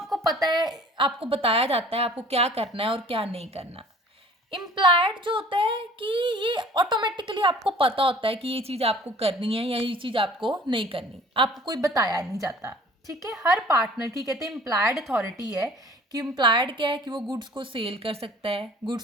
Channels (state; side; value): normal; both; correlation 0.49